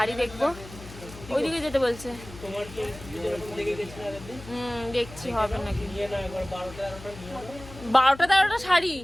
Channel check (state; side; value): noise; left; hum, 16 dB below the sound